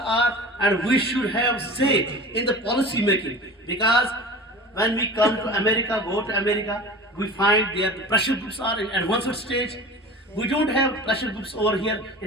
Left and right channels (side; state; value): both; normal; correlation 0.36